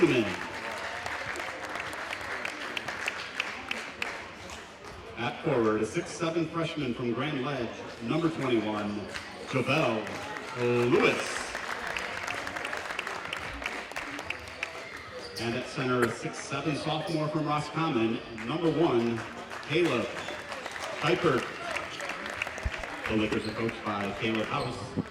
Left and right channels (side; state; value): both; identical; correlation 1.00